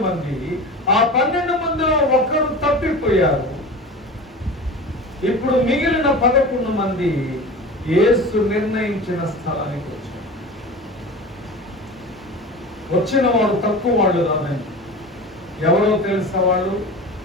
మంది. ఆ 12 మందిలో ఒకరు తప్పిపోయారు. ఇప్పుడు మిగిలిన 11 మంది యేసు నిర్ణయించిన స్థలానికి వచ్చారు. వచ్చిన వాడు తక్కువ వాళ్ళు కాదండి. ఎవరో తెలుసా? వాళ్ళు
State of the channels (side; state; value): both; normal; correlation 0.33